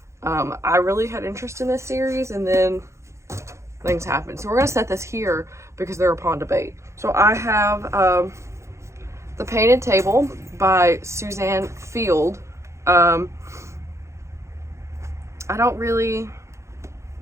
I really had interest in this series and then things happened. So we're going to set this here because they're upon debate. So I have The Painted Table by Suzanne Field. I don't really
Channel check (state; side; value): late; left; 0.14 ms